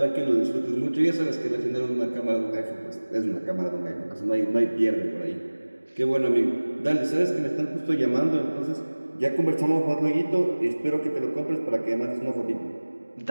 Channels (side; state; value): both; inverted; correlation -1.00